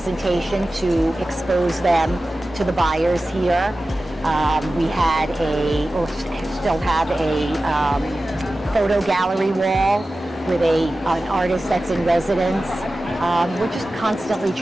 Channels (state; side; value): normal; both; correlation 0.95